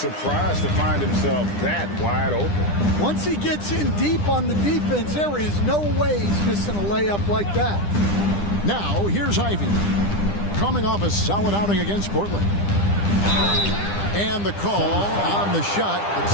to find himself that wide open. Once he gets in deep on the defense, there is no way he's missing a layup like that. Now, here's Ivey. Coming off a solid outing against Portland. And the call on the shot that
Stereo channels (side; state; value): right; late; 10 ms